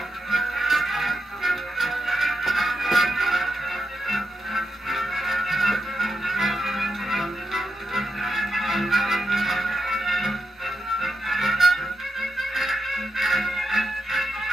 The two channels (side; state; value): both; normal; correlation 0.85